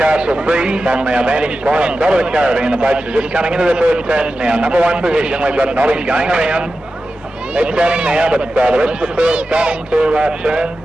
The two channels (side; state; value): both; normal; correlation 0.93